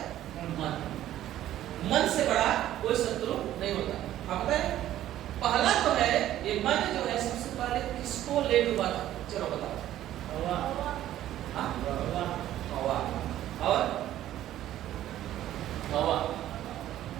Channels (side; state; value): left; quieter; 12.9 dB